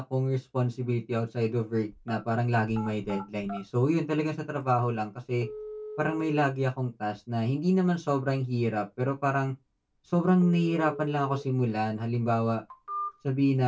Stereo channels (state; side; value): identical; both; correlation 1.00